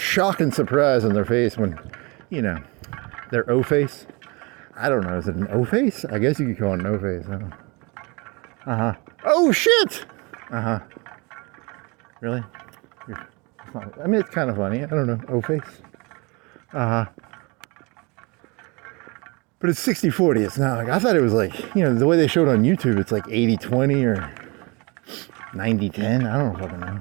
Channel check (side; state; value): left; quieter; 27.7 dB